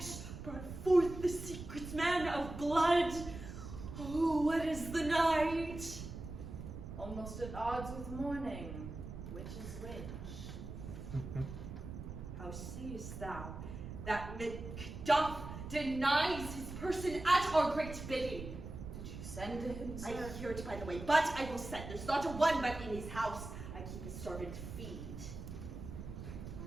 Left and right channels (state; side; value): noise; right; rumble, 9 dB below the sound